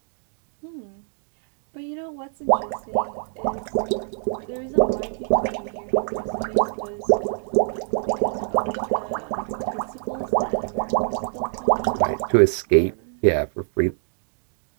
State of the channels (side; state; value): left; silent; 62 dB below the other